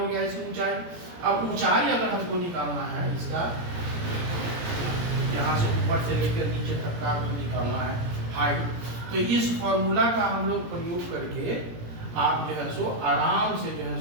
गया इसकी ऊंचाई। अब ऊंचाई अगर हमको निकालना है इसका, यहाँ से ऊपर से लेकर नीचे तक का निकालना है हाइट, तो इस फॉर्मूला का हम लोग प्रयोग करके आप जो है सो आराम से जो है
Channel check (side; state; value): left; late; 17 ms